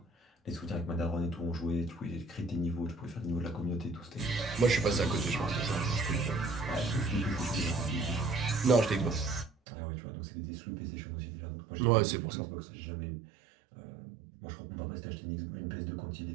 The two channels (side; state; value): left; drops out; at 9.5 s